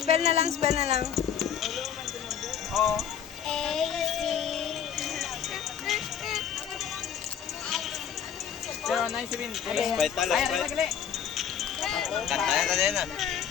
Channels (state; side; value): quieter; right; 8.6 dB